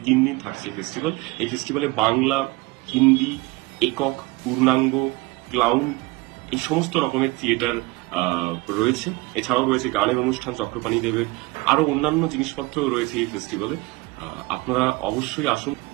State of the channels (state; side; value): quieter; left; 22.8 dB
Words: 3 দিন থাকছে এই ফেস্টিভ্যাল। এই ফেস্টিভ্যালে বাংলা, হিন্দি, একক, পূর্ণাঙ্গ, ক্লাউন এই সমস্ত রকমের থিয়েটার রয়েছে। এছাড়াও রয়েছে গানের অনুষ্ঠান চক্রপাণী দেবের, আরো অন্যান্য জিনিসপত্র রয়েছে এই ফেস্টিভ্যালে। আপনারা অবশ্যই আসুন।